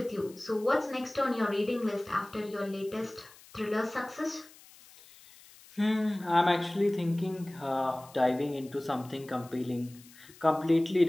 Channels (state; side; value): noise; left; hiss, 23 dB below the sound